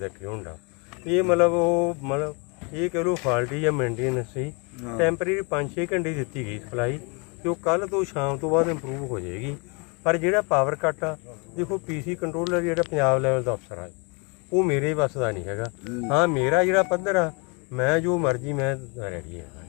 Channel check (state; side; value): quieter; right; 32.1 dB